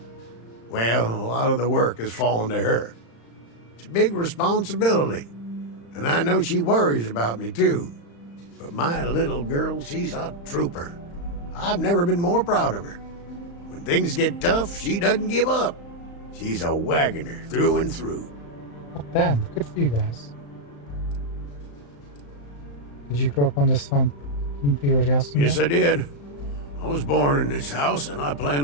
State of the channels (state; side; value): late; right; 35 ms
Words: well, a lot of the work has fallen to her. It's a big responsibility, and I know she worries about me too. But my little girl, she's a trooper. I've never been more proud of her. When things get tough, she doesn't give up. She's a wagoner through and through. Oh, damn, good for you guys. Did you grow up on this farm? Didn't you already ask me Yes, that? I did. I was born in this house, and I plan